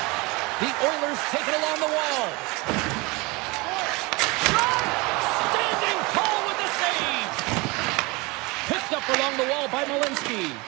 The Oilers take it along the wall. Shot! Standing tall with the save. Picked up along the wall by Malinsky.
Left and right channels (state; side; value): quieter; left; 25.4 dB